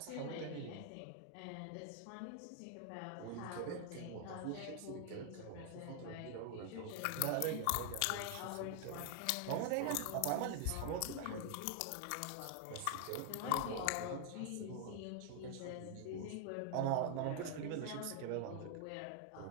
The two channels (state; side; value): different; both; correlation 0.00